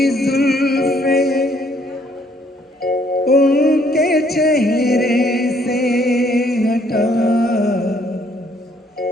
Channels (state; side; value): normal; both; correlation 0.66